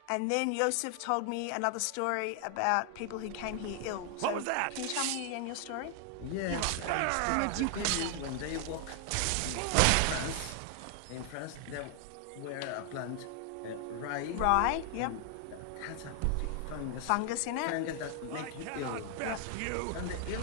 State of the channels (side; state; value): both; different; correlation 0.00